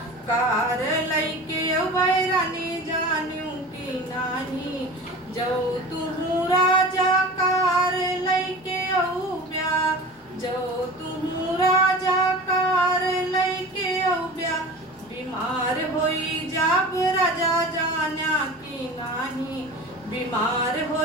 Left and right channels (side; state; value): both; normal; correlation 0.35